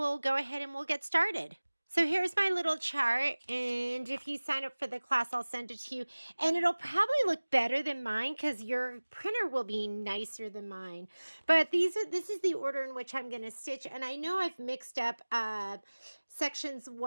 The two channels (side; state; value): both; inverted; correlation -1.00